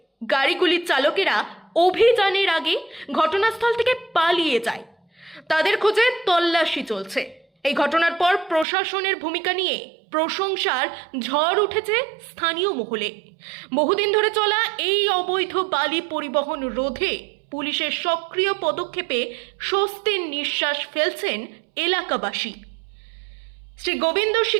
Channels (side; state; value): left; drops out; at 8.7 s